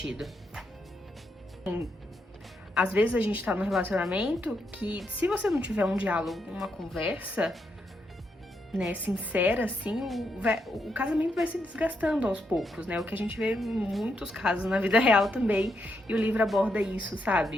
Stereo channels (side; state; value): both; normal; correlation 0.80